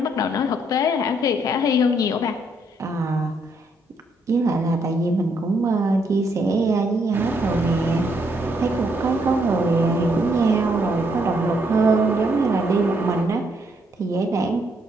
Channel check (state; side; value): normal; both; correlation 0.73